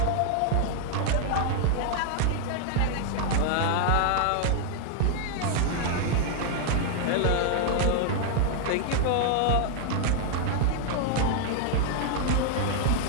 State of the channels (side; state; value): both; different; correlation 0.00